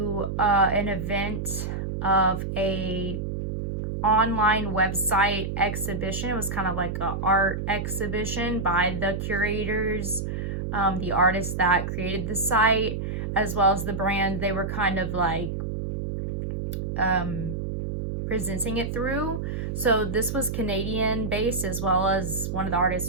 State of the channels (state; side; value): noise; right; hum, 3 dB below the sound